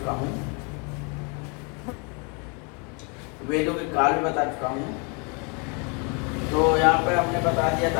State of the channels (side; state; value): right; quieter; 33.9 dB